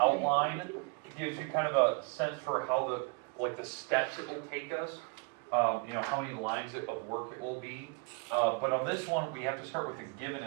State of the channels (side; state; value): left; quieter; 30.9 dB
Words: It gives you kind of a sense for how the steps it will take us. You know, how many lines of work it will be. But on this one, we have to start with the given